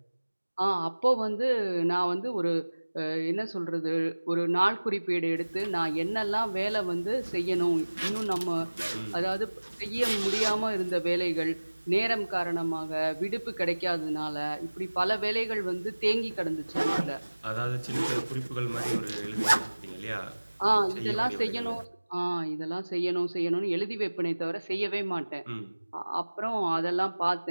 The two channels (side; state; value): both; inverted; correlation -1.00